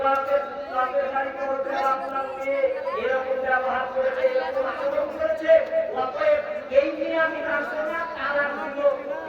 বাপের গাড়িতে বলতে আপনার মেয়ে এরকম ব্যবহার করেছে, এরকম আচরণ করেছে, অতএব এই নিয়ে আমি রাখবো না, তারা দিল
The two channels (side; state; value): both; identical; correlation 1.00